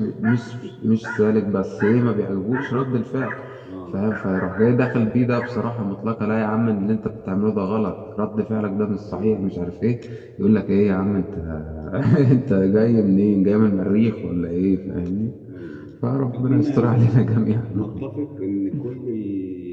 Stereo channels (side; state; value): both; identical; correlation 1.00